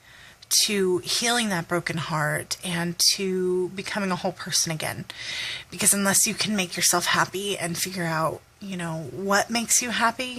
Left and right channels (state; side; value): identical; both; correlation 1.00